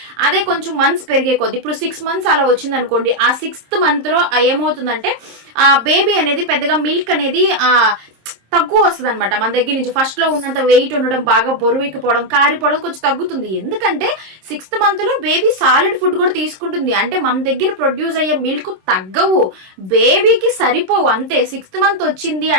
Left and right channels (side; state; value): left; late; 26 ms